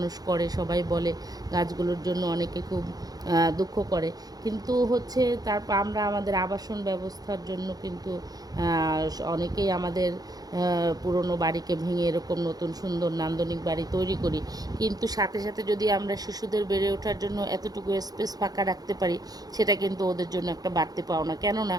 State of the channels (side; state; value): left; late; 0.19 ms